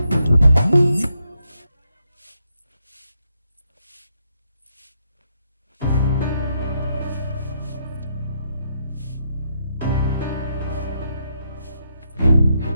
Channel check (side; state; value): both; inverted; correlation -0.80